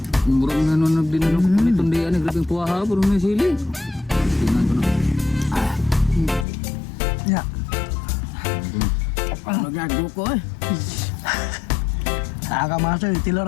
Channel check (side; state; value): right; drops out; at 6.5 s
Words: Murang nanonog din ano kapunit-tundian eh, grabe yung puwaha, puro may sili. Tingnan ko na. Ya. Magago ko eh. Aga mga choy,